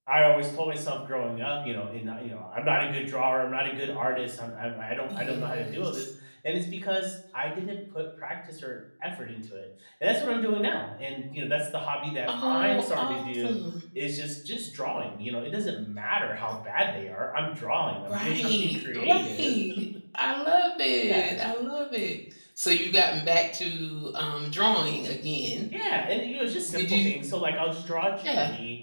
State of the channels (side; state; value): both; inverted; correlation -1.00